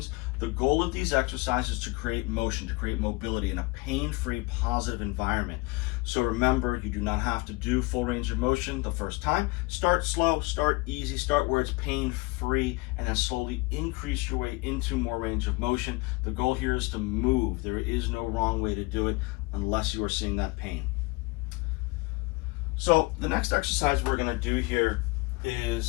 The goal of these exercises is to create motion, to create mobility in a pain-free, positive environment. So remember, you do not have to do full range of motion the first time. Start slow, start easy, start where it's pain-free, and then slowly increase your way into more range of motion. The goal here is to move. There is no wrong way to do it unless you are seeing that pain. So the next exercise we're going to do here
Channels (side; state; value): right; quieter; 24.6 dB